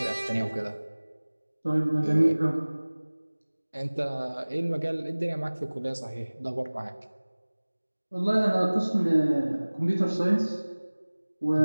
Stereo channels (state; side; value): inverted; both; correlation -1.00